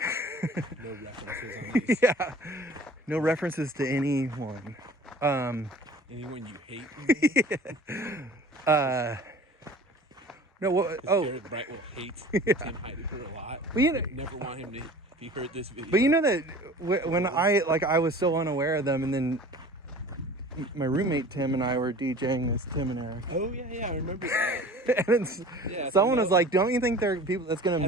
No references on these. Yeah. No references to anyone. Anyone you hate? No, what? Oh. Garrett Brightwell hates Tim Heidecker a lot. Well, you know, never want him to, if he heard this video. but you know that when I was so unaware of them, and then my roommate Tim and I were DJing this Tim and Eric. Oh yeah, I remember that. And someone was like, "Don't you think there are people that's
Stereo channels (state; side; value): normal; both; correlation 0.43